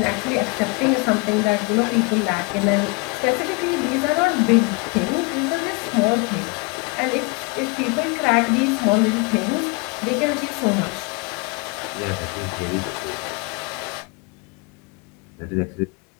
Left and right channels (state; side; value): quieter; right; 28.6 dB